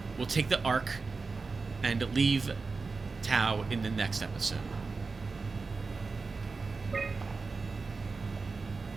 We'll take the Ark and leave Tau in the next episode.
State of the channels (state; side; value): quieter; left; 4.2 dB